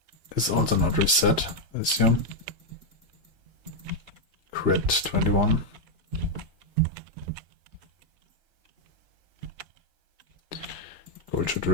is also not reset, I assume. Crit 21. Gold should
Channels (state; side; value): late; left; 2.8 ms